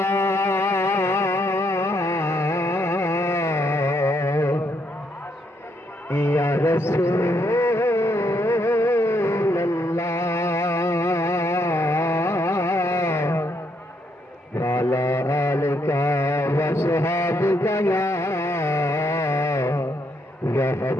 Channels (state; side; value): normal; both; correlation 0.75